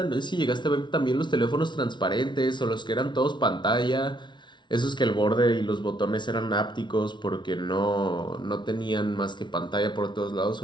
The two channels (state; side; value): late; right; 0.23 ms